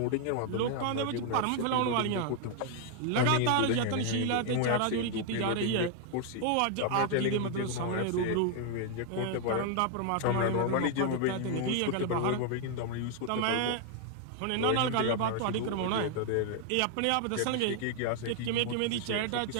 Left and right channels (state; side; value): different; both; correlation 0.00